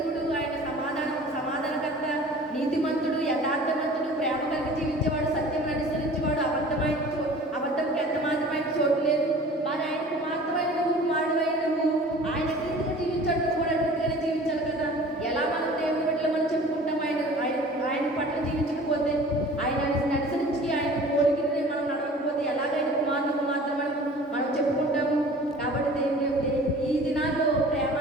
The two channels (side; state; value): both; normal; correlation 0.44